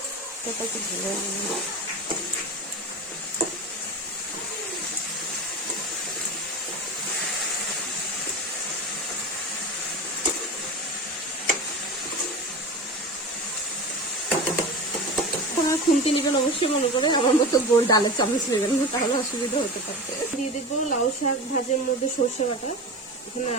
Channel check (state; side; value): normal; both; correlation 0.29